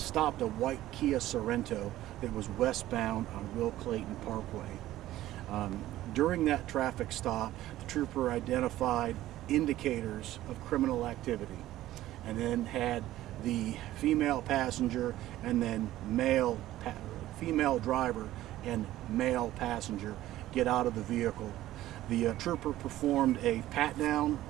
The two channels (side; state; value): left; quieter; 14.7 dB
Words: a white Kia Sorento that was westbound on Will Clayton Parkway. During that traffic stop, the trooper identified indicators of criminal activity and then had the female passenger and then female driver and male passenger get out of the vehicle. The trooper performed a pat down